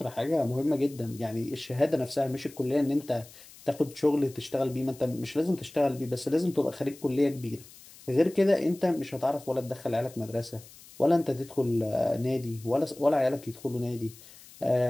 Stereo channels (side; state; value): left; noise; hiss, 21 dB below the sound